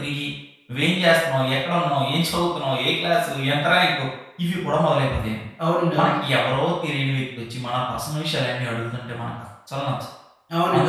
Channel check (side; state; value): both; identical; correlation 1.00